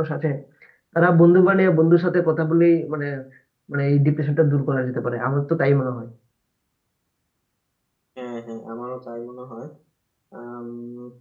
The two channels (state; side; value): identical; both; correlation 1.00